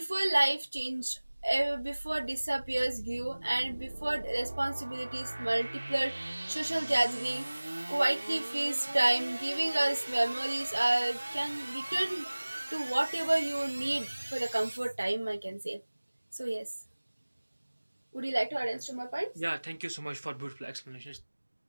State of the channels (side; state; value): both; inverted; correlation -1.00